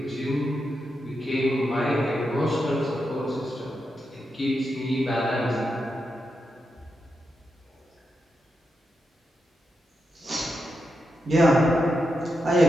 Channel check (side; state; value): both; normal; correlation 0.86